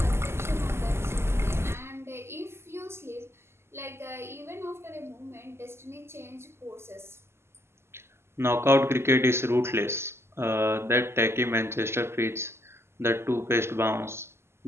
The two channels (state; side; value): late; left; 0.12 ms